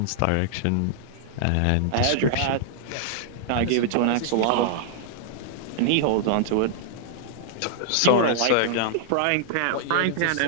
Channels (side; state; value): both; different; correlation -0.01